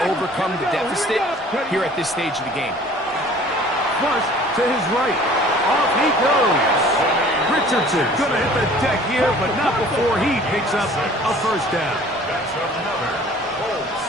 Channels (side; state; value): both; normal; correlation 0.50